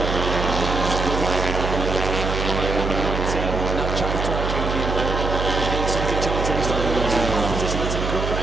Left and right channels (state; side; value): noise; right; hum, 3 dB below the sound